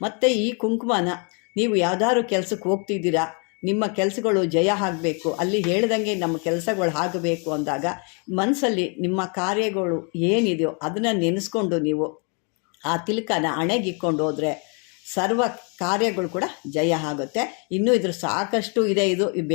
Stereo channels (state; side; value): quieter; right; 36.7 dB